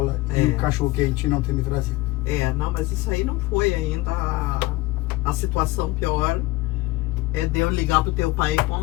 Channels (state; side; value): quieter; right; 19.9 dB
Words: e o cachorro-quente não ter me trazido. Não, mas isso aí não foi ainda a situação pior de eu ligar pro teu pai e